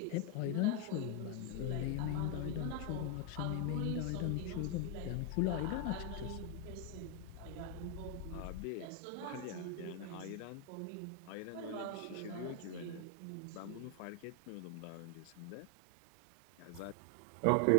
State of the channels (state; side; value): different; both; correlation 0.01